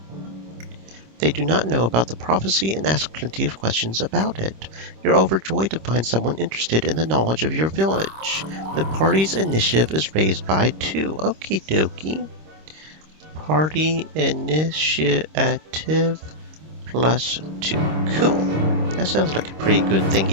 They do not know about the prophecy and ask plenty of questions about it. You're overjoyed to find someone interested in the knowledge of your village. The party's initiative is raised by 2. Okie dokie. Party initiative +2. Cool. That sounds like a pretty good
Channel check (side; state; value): left; late; 26 ms